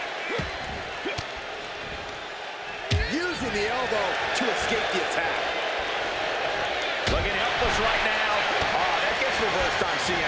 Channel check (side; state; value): both; identical; correlation 1.00